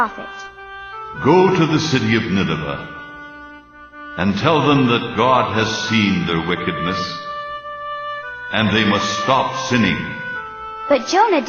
Go to the city of Nineveh and tell them that God has seen their wickedness, and they must stop sinning. But Jonah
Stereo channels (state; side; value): identical; both; correlation 1.00